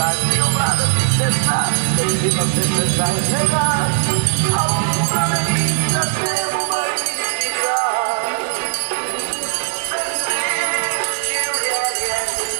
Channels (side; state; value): left; silent; 62 dB below the other